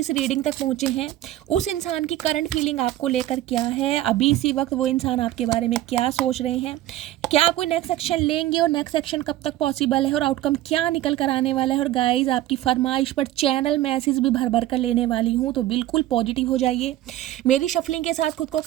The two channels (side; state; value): left; quieter; 14.5 dB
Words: रीडिंग तक पहुंचे हैं, उस इंसान की करंट फीलिंग आपको लेकर क्या है, अभी इसी वक्त वो इंसान आपके बारे में क्या सोच रहे हैं, क्या आप कोई नेक्स्ट एक्शन लेंगे और नेक्स्ट एक्शन कब तक पॉसिबल है और आउटकम क्या निकल कर आने वाला है। और गाइज आपकी फरमाइश पर चैनल मैसेज भी भर भर कर लेने वाली हूँ, तो बिल्कुल पॉजिटिव हो जाइए। मेरी शफलिंग के साथ खुद को